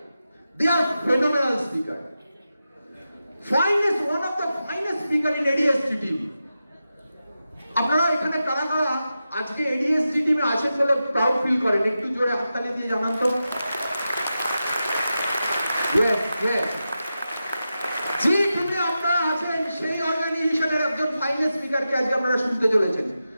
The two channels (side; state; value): both; inverted; correlation -0.91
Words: they are phenomenal speaker, finest, one of the finest speaker in ADST TV. আপনারা এখানে কারা কারা আজকে এডিএসটি টিমে আছেন বলে প্রাউড ফিল করেন? একটু জোরে হাততালি দিয়ে জানান তো। ইয়েস ইয়েস, যে টিমে আপনারা আছেন সেই অর্গানাইজেশনের একজন ফাইনেস্ট স্পিকারকে আজকে আপনারা শুনতে চলেছেন।